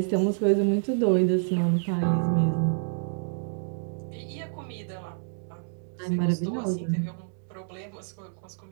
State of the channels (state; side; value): silent; left; 59 dB below the other